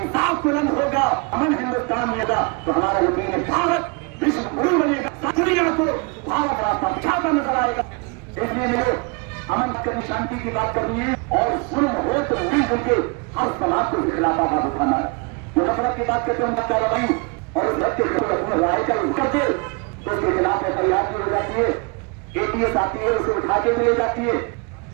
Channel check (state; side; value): quieter; left; 31.1 dB